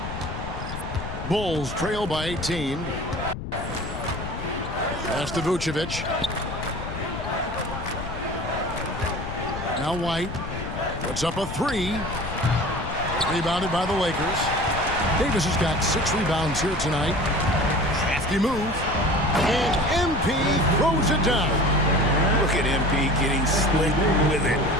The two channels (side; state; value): left; noise; rumble, 8 dB below the sound